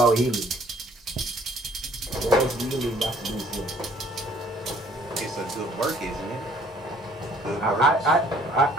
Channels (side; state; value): both; normal; correlation 0.59